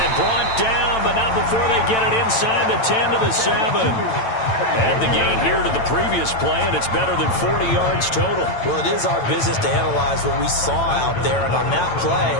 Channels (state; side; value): late; right; 9.0 ms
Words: brought down, but not before they get it inside the 10 to the 7. Add the gain here to the previous play, and it's better than 40 yards total. Well, it is our business to analyze what we saw out there. And on that play,